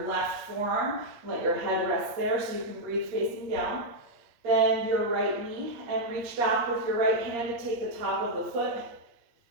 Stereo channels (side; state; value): left; late; 8.5 ms